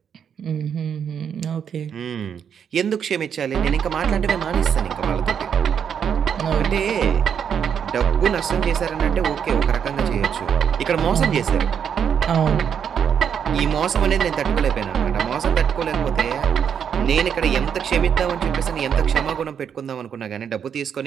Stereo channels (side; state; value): left; quieter; 7.9 dB